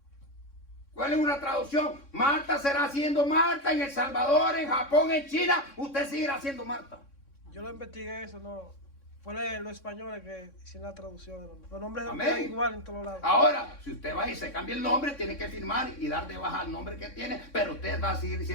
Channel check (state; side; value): late; right; 3.6 ms